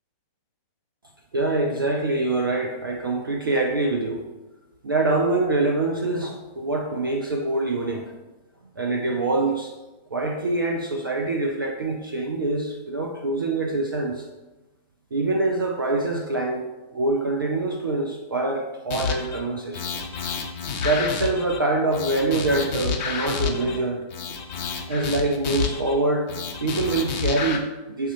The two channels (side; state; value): both; inverted; correlation -0.30